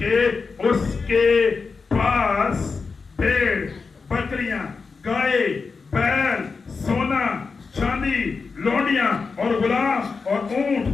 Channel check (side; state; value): right; quieter; 4.7 dB